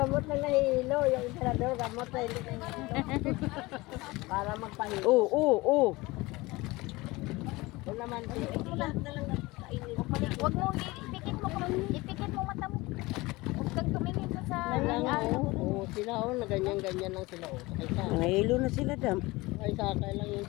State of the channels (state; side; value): quieter; right; 21.7 dB